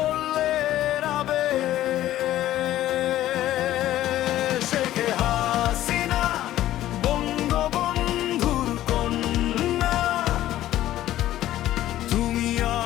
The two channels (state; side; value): quieter; right; 13.7 dB